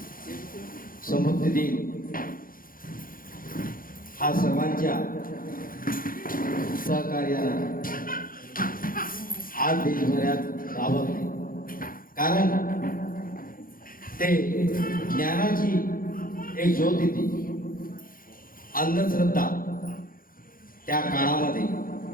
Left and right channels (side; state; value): right; late; 0.41 ms